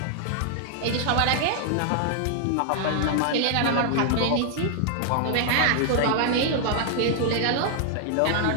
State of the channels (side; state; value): both; different; correlation -0.01